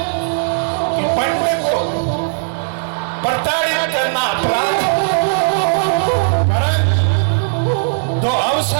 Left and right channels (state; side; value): silent; left; 64 dB below the other